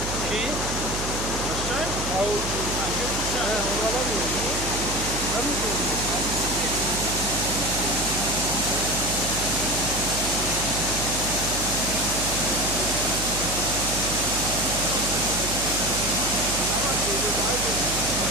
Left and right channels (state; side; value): noise; right; hum, 7 dB below the sound